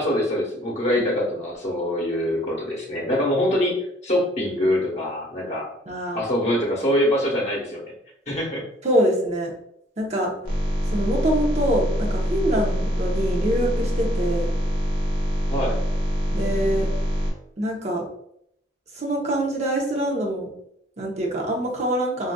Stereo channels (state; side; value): normal; both; correlation 0.62